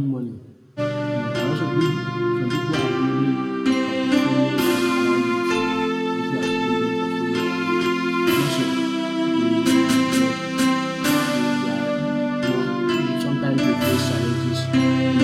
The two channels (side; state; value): both; identical; correlation 1.00